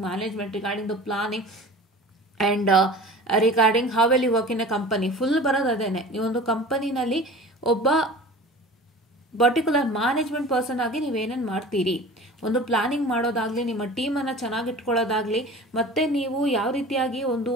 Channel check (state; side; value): normal; both; correlation 0.39